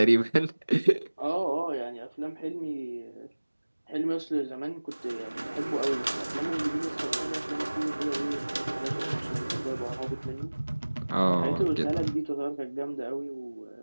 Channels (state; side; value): inverted; both; correlation -1.00